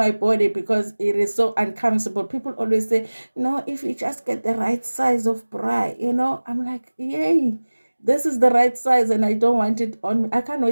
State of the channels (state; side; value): inverted; both; correlation -1.00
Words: body, because it is so uncomfortable. People always say, no, if you just get the right size of bra, I'm like, yay, this is the right size and I don't want it on me. I can't